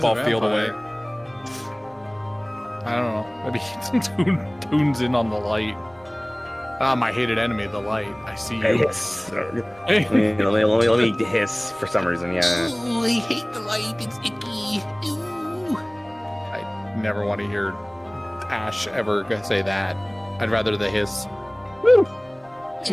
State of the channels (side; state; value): right; noise; rumble, 30 dB below the sound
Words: field away. I don't know. Maybe he tunes in on the light. Ah, my hated enemy, the light. I see you. Hiss. let me hiss for some reason. Yeah. Ooh, I hate the light. It's icky. Ooh. I never want to hear Ash ever say that. I'd rather the hiss. Ooh,